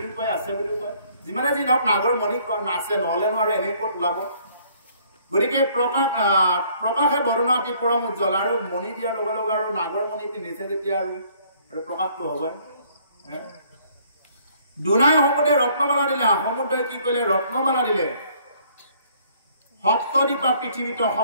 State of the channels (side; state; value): both; inverted; correlation -0.61